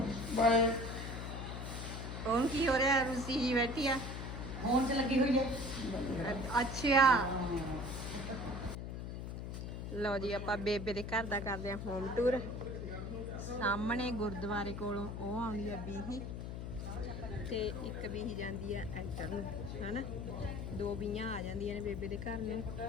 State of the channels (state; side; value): noise; left; hum, 6 dB below the sound